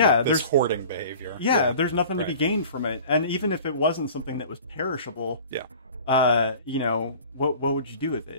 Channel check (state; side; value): inverted; both; correlation -0.43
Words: hoarding behavior? Yeah, there's nothing to be gained from it. And even if it wasn't something that was perishable, what would you do with